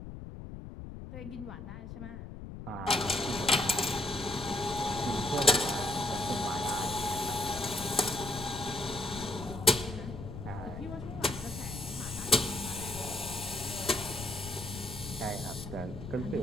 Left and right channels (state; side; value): noise; left; rumble, 10 dB below the sound